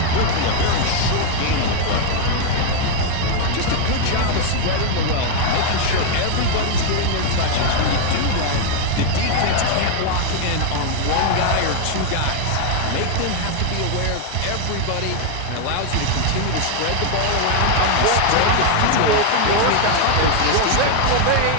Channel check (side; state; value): both; different; correlation 0.00